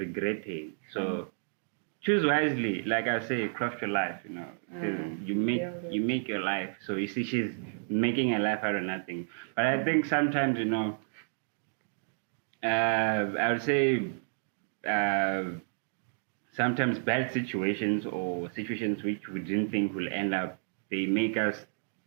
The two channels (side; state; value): left; silent; digital silence